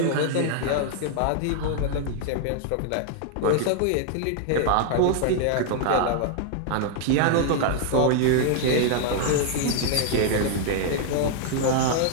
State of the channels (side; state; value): both; different; correlation 0.00